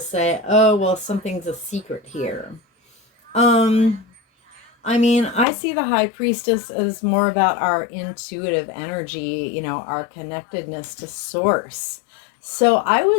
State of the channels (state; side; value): drops out; right; at 5.5 s